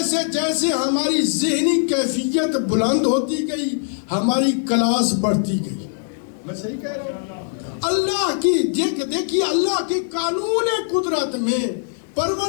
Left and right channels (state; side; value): silent; right; 65 dB below the other